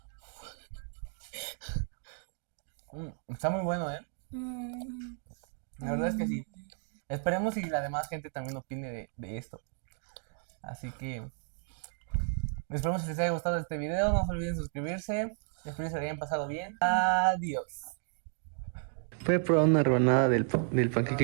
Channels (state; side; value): silent; left; 56 dB below the other